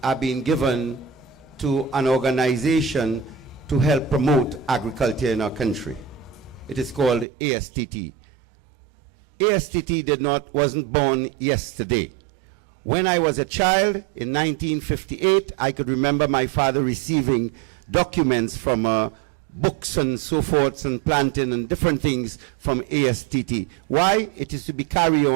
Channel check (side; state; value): left; drops out; at 7.2 s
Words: are being given to an organization to help promote agriculture in our country. It is called ASTT. ASTT wasn't born yesterday. When I was a child in 1958, I could remember my father receiving documents from books and so forth and planting and different things from ASTT. Why? It is to be carried